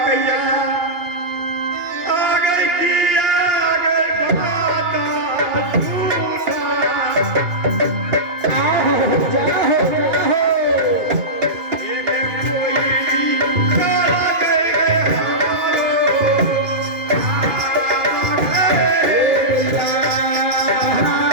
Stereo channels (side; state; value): left; late; 2.4 ms